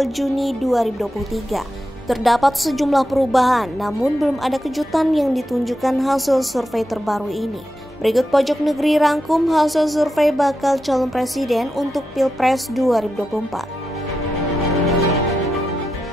Juni 2023. Terdapat sejumlah perubahan, namun belum ada kejutan yang ditunjukkan hasil survei terbaru ini. Berikut Pojok Negeri rangkum hasil survei bakal calon presiden untuk Pilpres 2024.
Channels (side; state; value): both; normal; correlation 0.88